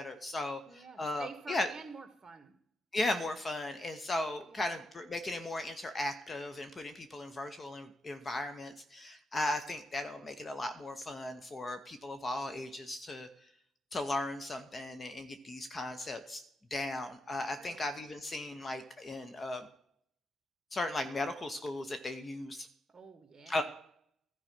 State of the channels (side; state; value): both; normal; correlation 0.84